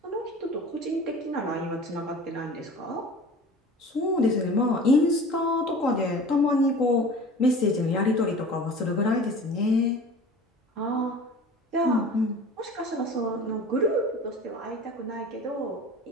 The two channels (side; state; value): both; normal; correlation 0.40